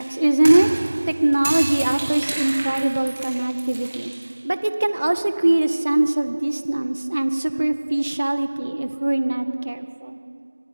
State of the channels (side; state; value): both; inverted; correlation -1.00